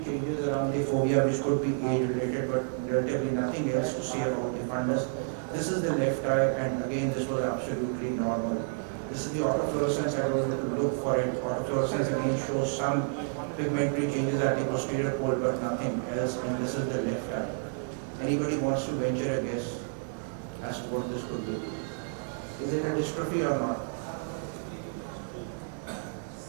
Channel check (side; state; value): left; silent; digital silence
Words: changes around the fovea which could be age-related, but relatively nothing else to say about the fundus. This is the left eye, and again this was absolutely normal. This is the autofluorescence. I was able to look for it. Autofluorescence again shows some pigmentary changes at the posterior pole, but nothing else. And this is the left eye. Anybody wants to venture a guess as to what this could be? Is it a dystrophy or not?